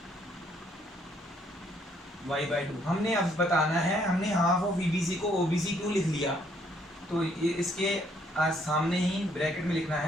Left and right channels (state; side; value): normal; both; correlation 0.68